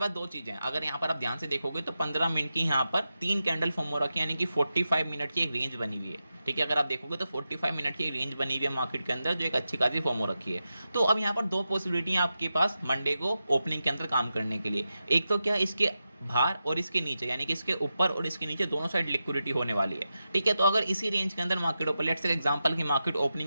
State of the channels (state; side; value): inverted; both; correlation -0.90